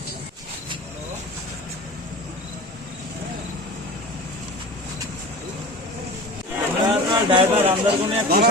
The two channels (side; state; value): both; normal; correlation 0.35